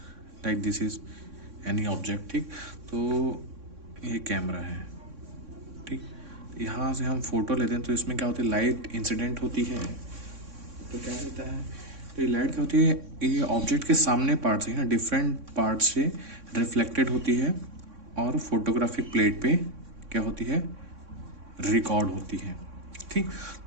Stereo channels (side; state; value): left; late; 3.6 ms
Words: like this is any object. ठीक। तो ये कैमरा है। ठीक। यहाँ से हम फोटो लेते हैं तो इसमें क्या होती है, लाइट इंसिडेंट होती है। तो क्या होता है, तो ये लाइट क्या होती है, ये ऑब्जेक्ट के सामने पार्ट से ना डिफरेंट पार्ट से रिफ्लेक्टेड होती है और फोटोग्राफिक प्लेट पे क्या होती है, रिकॉर्ड होती है। ठीक।